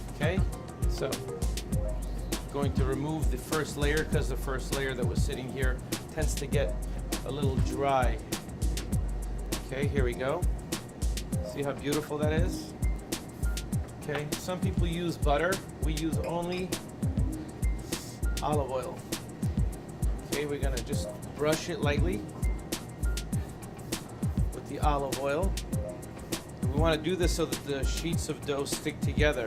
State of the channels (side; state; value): both; identical; correlation 1.00